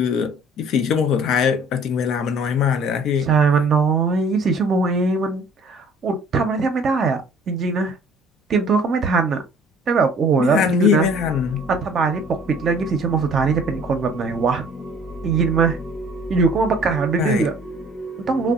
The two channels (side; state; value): both; normal; correlation 0.53